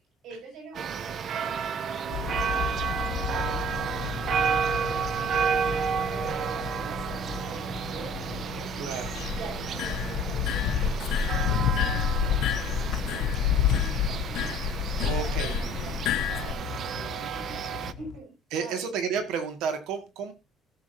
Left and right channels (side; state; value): both; normal; correlation 0.50